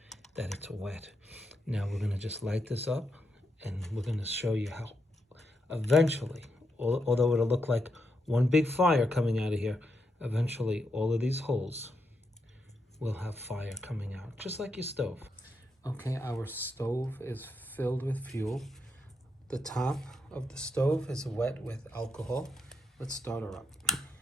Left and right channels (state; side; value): normal; both; correlation 0.82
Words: that it's wet. Now we're gonna just light this up and we're gonna show you how eventually, although it'll look like one big fire coming out of here, eventually all of these holes will have fire coming out, just like your stove. Okay, our stove is filled with fuel. The top of the stove is wet with alcohol. Let's start her up.